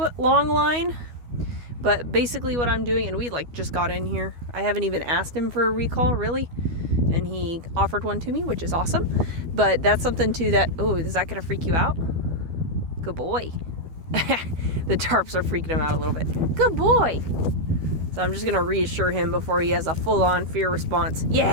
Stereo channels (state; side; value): late; left; 12 ms